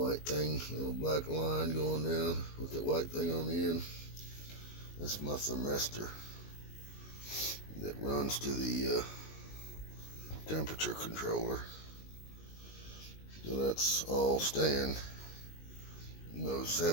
thing, little black line going down with that white thing on the end. That's my thermistor that runs to the temperature controller. So that's all staying. Those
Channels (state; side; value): late; right; 19 ms